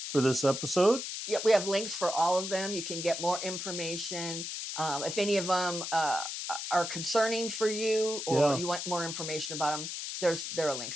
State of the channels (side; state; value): left; noise; hiss, 5 dB below the sound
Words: for this episode. Yeah, we have links for all of them. You can get more information. If any of them are concerning for you, or you want more information about them, there are